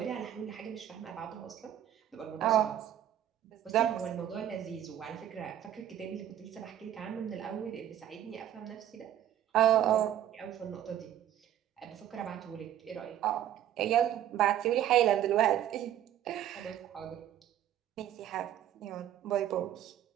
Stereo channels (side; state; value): left; quieter; 11.3 dB